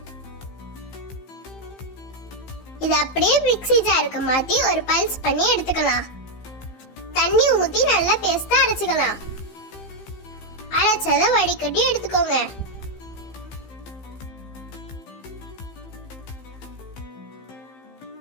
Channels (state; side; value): late; right; 15 ms